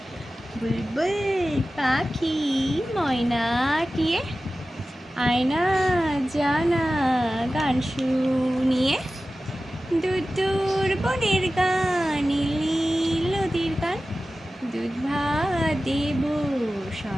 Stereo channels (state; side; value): normal; both; correlation 0.95